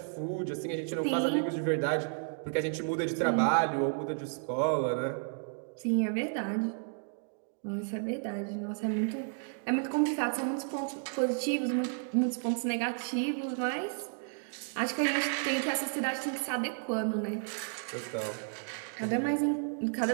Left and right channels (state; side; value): silent; left; 56 dB below the other